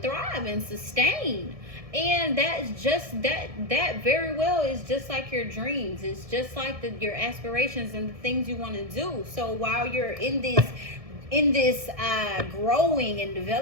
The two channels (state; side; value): late; left; 1.6 ms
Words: thrive and sustain. And that's just that very well is just like your dreams. It's just like your aspirations and the things you want to do. So while you're in this growing and